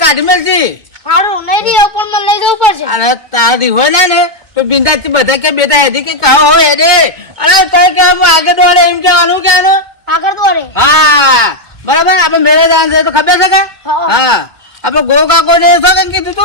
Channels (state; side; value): late; left; 2.2 ms